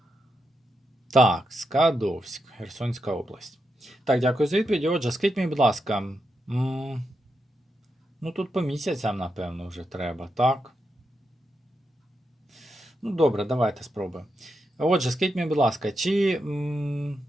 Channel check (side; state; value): both; normal; correlation 0.85